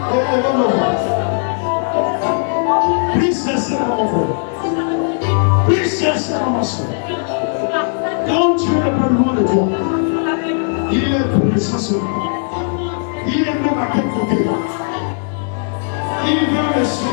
Élevons nos mains. Prie sincèrement, mon frère. Prie sincèrement, ma soeur. Quand Dieu n'est pas loin de toi, il est présent sur toi. Il est même à quel côté. Il veut me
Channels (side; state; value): right; silent; digital silence